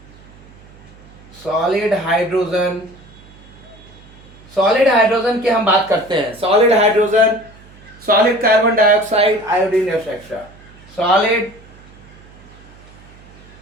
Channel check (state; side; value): noise; right; hum, 23 dB below the sound